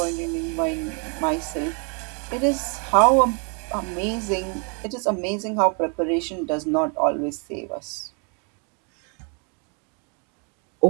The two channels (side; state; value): left; quieter; 37.1 dB